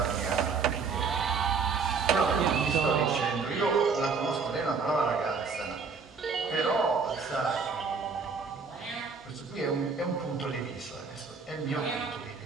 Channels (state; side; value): quieter; left; 5.1 dB